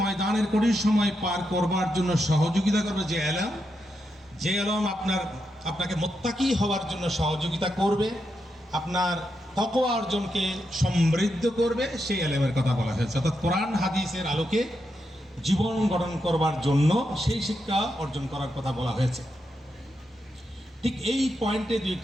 কঠিন সময় পার করবার জন্য সহযোগিতা করবে যে এলম আপনাকে মুত্তাকি হওয়ার জন্য সহযোগিতা করবে, আপনার তাকওয়া অর্জনকে সমৃদ্ধ করবে, সেই এলেমের কথা বলা হয়েছে। অর্থাৎ কোরআন হাদিসের আলোকে জীবন গঠন করবার জন্য সেই শিক্ষা অর্জন করার কথা বলা হয়েছে। ঠিক এই পয়েন্টে দুই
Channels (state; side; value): normal; both; correlation 0.84